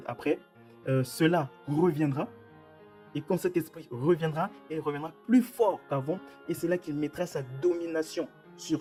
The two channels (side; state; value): both; identical; correlation 1.00